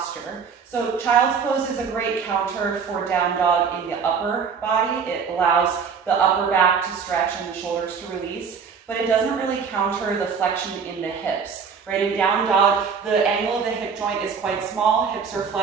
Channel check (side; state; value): left; quieter; 6.2 dB